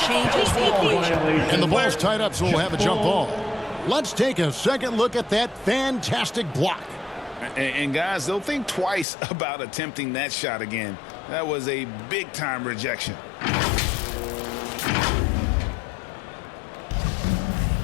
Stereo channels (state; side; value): drops out; right; at 9.1 s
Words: changes the equation. And the ball's tied up, so we'll have a jump ball. Let's take a second look at that fantastic block. And guys, they'll think twice about attempting that shot again. That was a big-time rejection.